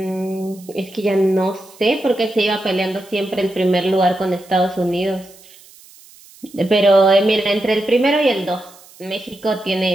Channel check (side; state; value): right; noise; hiss, 24 dB below the sound